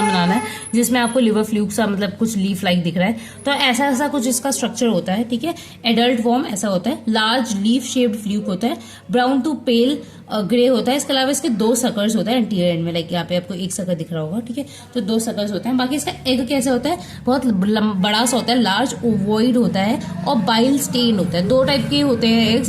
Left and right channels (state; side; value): identical; both; correlation 1.00